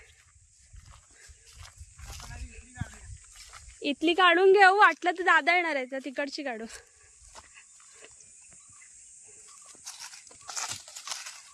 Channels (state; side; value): identical; both; correlation 1.00